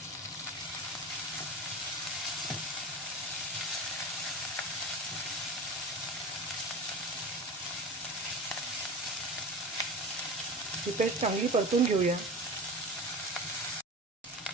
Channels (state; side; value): normal; both; correlation 0.31